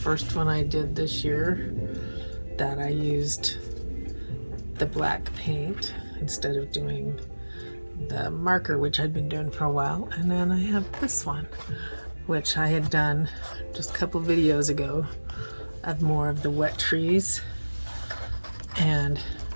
one I did this year that I used the black paint instead of doing the marker, which I'd been doing for a while. And then I have this one, which I had done just a couple videos ago of more of the wet trees, and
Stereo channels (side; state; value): both; inverted; correlation -1.00